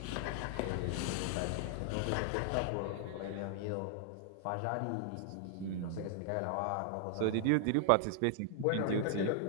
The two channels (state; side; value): different; both; correlation 0.00